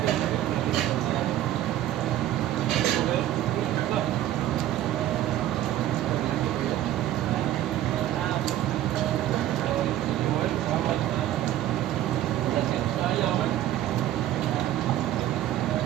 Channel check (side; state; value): left; quieter; 13.2 dB